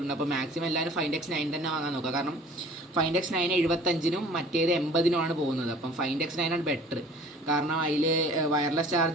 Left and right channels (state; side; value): normal; both; correlation 0.48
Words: അപ്പോൾ മാക്സിമം എല്ലാവരും Find X9 തന്നെ വാങ്ങാൻ നോക്കുക. കാരണം Find X9 75-നും മറ്റേത് 80-നും പോകുന്നത്. അപ്പം Find X9 ആണ് ബെറ്റർ. കാരണം അതിൽ വയർലെസ്